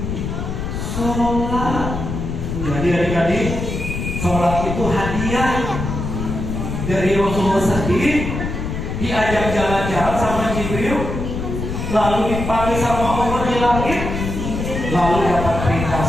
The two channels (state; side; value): noise; left; rumble, 4 dB below the sound